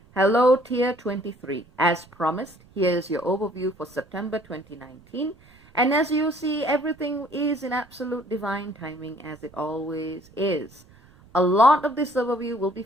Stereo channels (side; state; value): right; noise; rumble, 27 dB below the sound